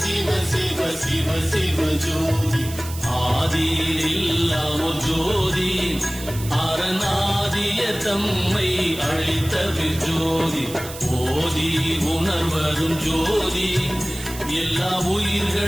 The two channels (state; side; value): noise; right; hiss, 13 dB below the sound